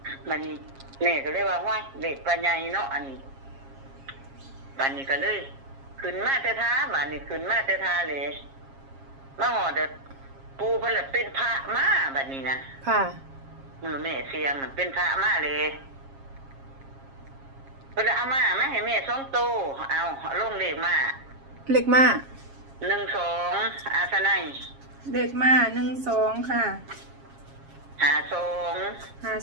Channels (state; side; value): late; left; 7.4 ms